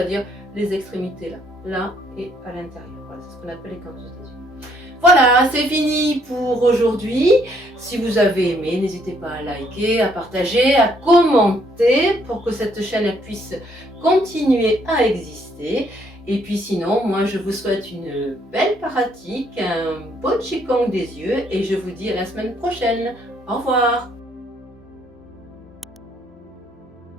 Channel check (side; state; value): both; normal; correlation 0.68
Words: les extrémités là et à l'intérieur. Voilà, c'est ce qu'on appelle les canthus des yeux. Voilà, c'est fini pour aujourd'hui. Si vous avez aimé, n'hésitez pas à liker, à partager, à commenter pour que cette chaîne puisse continuer à exister. Et puis sinon, moi je vous souhaite une belle pratique, un beau Qigong des yeux et je vous dis à la semaine prochaine. Au revoir.